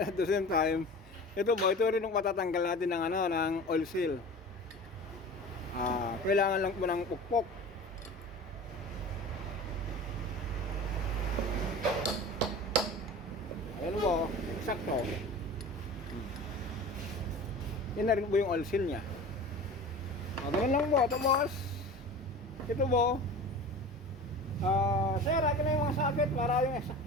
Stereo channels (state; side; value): normal; both; correlation 0.36